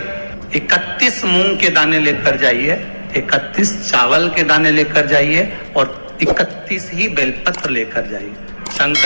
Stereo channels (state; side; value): inverted; both; correlation -1.00